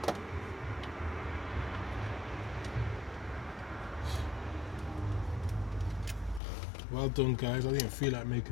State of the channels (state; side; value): drops out; right; at 6.4 s